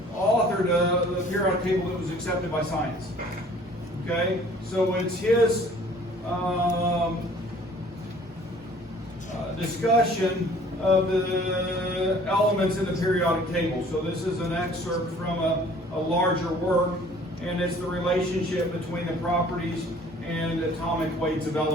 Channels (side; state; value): both; normal; correlation 0.53